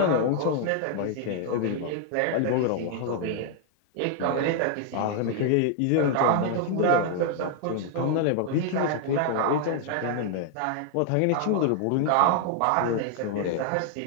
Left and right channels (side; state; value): both; different; correlation 0.00